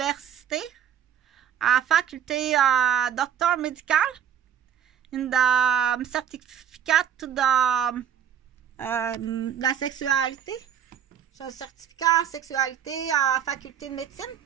Faculté docteur médical. In the certificate to the la sexualité. J'ai un certificat en sexualité à faculté de médecine.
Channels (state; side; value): quieter; left; 9.2 dB